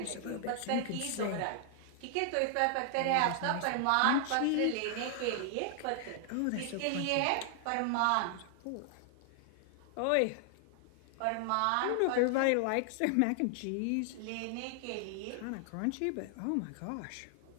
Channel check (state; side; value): different; both; correlation 0.00